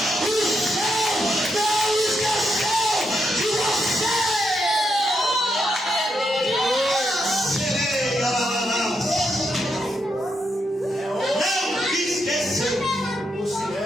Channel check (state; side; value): normal; both; correlation 0.81